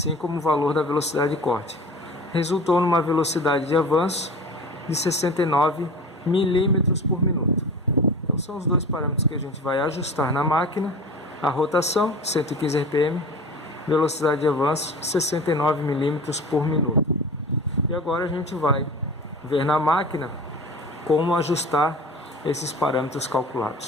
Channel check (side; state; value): both; normal; correlation 0.36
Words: como o valor da velocidade de corte. Resultou numa velocidade de avanço de 69 milímetros por minuto. Então são os dois parâmetros que a gente vai ajustar na máquina: a rotação, 115 RPM, velocidade de avanço, 69 milímetros por minuto. E agora a gente vai ver na máquina como ajustar esses parâmetros